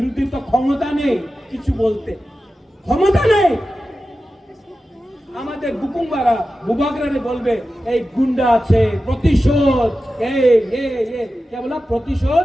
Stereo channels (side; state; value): both; normal; correlation 0.93